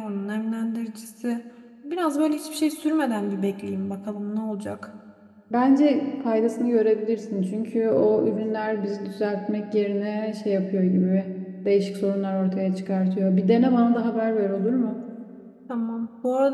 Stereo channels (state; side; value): identical; both; correlation 1.00